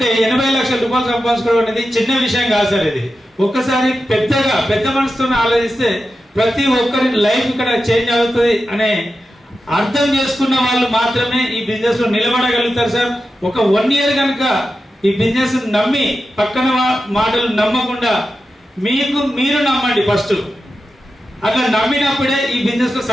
80 లక్షల రూపాయలు సంపాదించుకోవడం అనేది చిన్న విషయం కాదు సార్. ఇది ఒక్కసారి పెద్ద మనసుతో ఆలోచిస్తే ప్రతి ఒక్కరి లైఫ్ ఇక్కడ చేంజ్ అవుతుంది అనే అర్థం చేసుకున్న వాళ్ళు మాత్రమే ఈ బిజినెస్ లో నిలబడగలుగుతారు సార్. ఒక 1 year కనుక ఈ బిజినెస్ నమ్మి పక్కన మాటలు నమ్మకుండా మీరు నమ్మండి ఫస్ట్. అట్లా నమ్మినప్పుడే ఈ బిజినెస్ లో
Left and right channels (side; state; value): both; normal; correlation 0.91